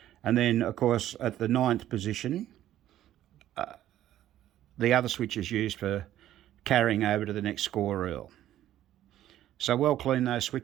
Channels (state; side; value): quieter; left; 12.7 dB